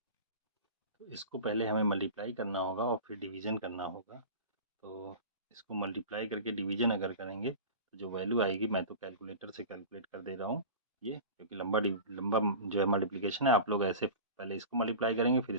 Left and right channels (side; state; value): both; inverted; correlation -0.34